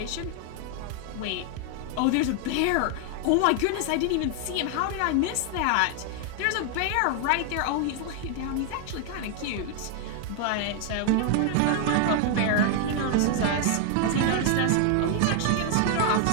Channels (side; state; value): both; different; correlation 0.00